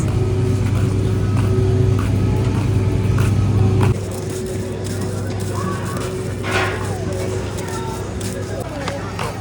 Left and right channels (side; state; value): both; identical; correlation 1.00